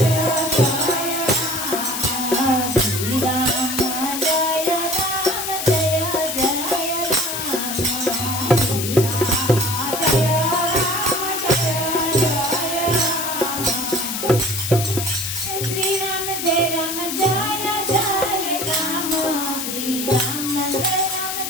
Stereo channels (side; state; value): left; noise; hiss, 4 dB below the sound